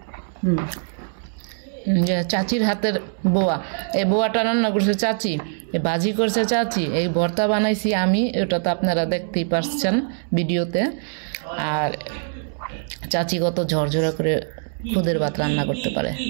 যে চাচির হাতের বোয়া, এই বোয়াটা রান্না করছে চাচি, এই ভাজি করছে চাচি, এই ভর্তা বানাইছি আমি, ওটা তো আপনারা দেখতেই পারছেন ভিডিওতে। আর চাচি কত ঝরঝরা করে খুদের ভাত রান্না করতে পারে।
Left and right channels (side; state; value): left; silent; 64 dB below the other